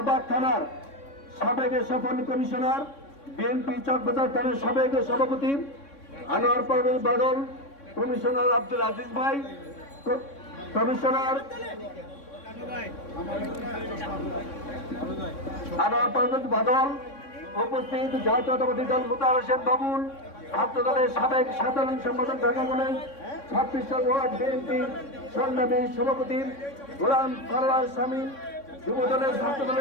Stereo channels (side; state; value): right; late; 3.6 ms